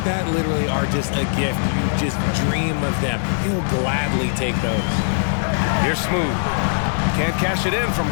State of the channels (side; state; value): right; silent; digital silence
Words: that literally are just a gift. You just dream of them. He'll gladly take those. Here's Smooth. Can't cash it in